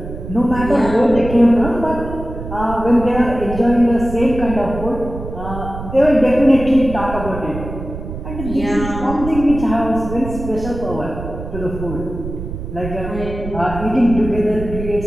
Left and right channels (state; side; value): noise; right; rumble, 8 dB below the sound